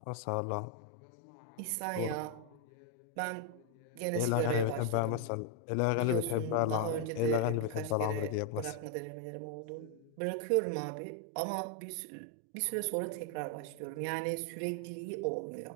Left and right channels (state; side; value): different; both; correlation 0.01